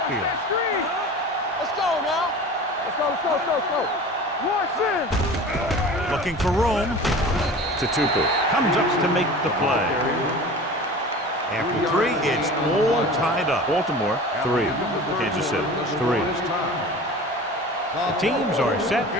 Let's go now. Let's go. Watch in. Looking for room. Tupu comes up to make the play. After 3, it's all tied up. Baltimore 3, Kansas City 3. The teams are set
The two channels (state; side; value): normal; both; correlation 0.38